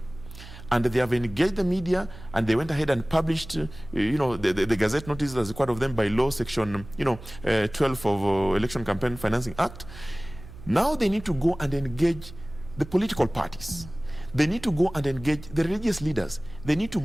and they have engaged the media, and they went ahead and published, you know, the Gazette notice as required of them by law, section, 12 of Election Campaign Financing Act. Now they need to go and engage the political parties. They need to go and engage the religious leaders. They need to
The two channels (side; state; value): right; noise; hum, 16 dB below the sound